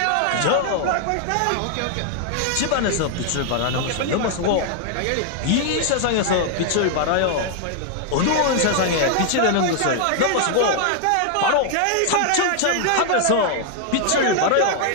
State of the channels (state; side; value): different; both; correlation 0.00